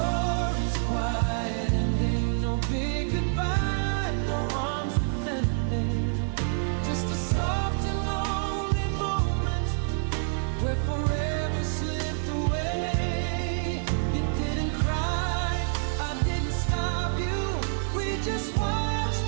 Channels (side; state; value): left; silent; 60 dB below the other